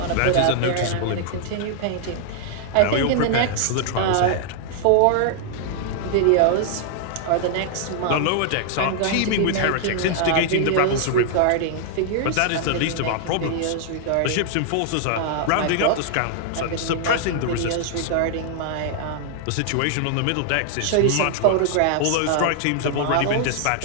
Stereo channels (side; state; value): both; different; correlation -0.01